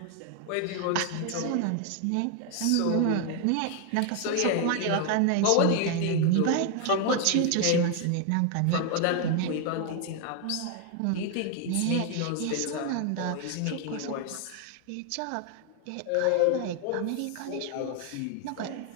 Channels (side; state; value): both; different; correlation 0.00